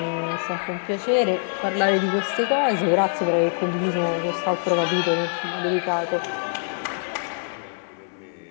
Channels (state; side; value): silent; right; 62 dB below the other